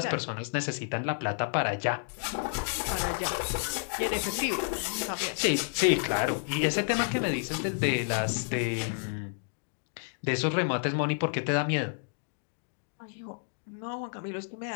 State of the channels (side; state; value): right; silent; digital silence